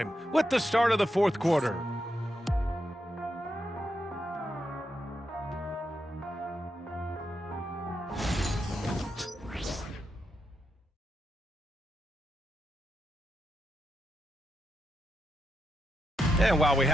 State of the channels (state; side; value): normal; both; correlation 0.84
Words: with the start of the fourth quarter. And while we